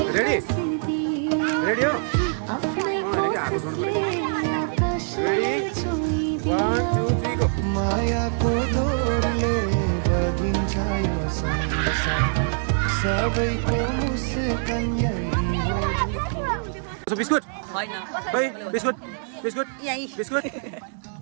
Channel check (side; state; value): left; silent; digital silence